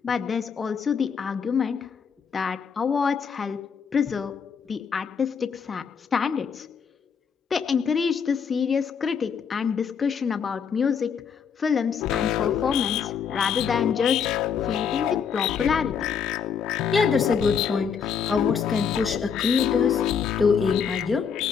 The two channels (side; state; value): right; quieter; 6.7 dB